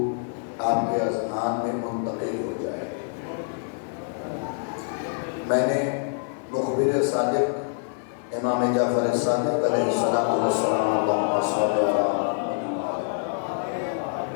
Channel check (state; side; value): silent; right; 61 dB below the other